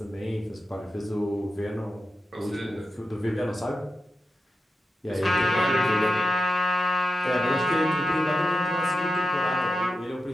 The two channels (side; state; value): both; normal; correlation 0.90